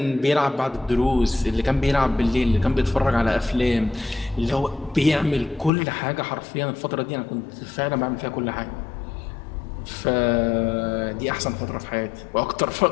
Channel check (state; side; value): drops out; right; at 5.7 s